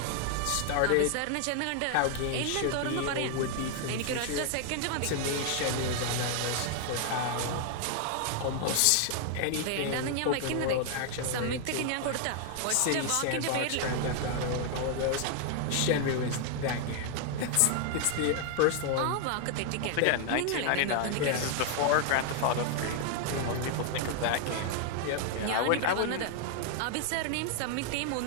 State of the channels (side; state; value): both; different; correlation 0.00